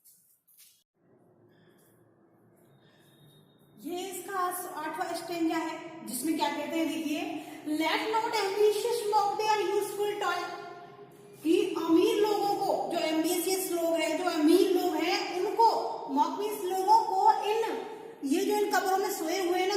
ये इसका 8वां स्टेंजा है जिसमें क्या कहते हैं, देखिए, let not ambitious mock their useful toy, कि अमीर लोगों को, जो एम्बिशियस लोग हैं, जो अमीर लोग हैं, उनको, मॉक मीन्स लोगों को, ये जो इन कब्रों में सोए हुए हैं ना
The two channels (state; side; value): identical; both; correlation 1.00